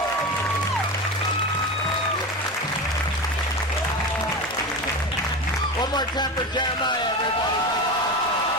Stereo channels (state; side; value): normal; both; correlation 0.25